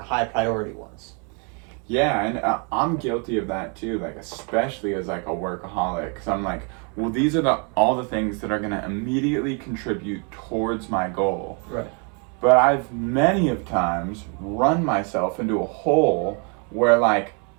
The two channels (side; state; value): left; quieter; 37.0 dB